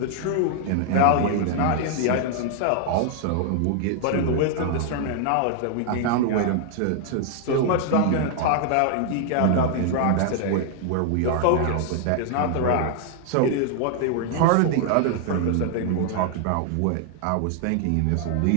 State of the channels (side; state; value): both; different; correlation 0.00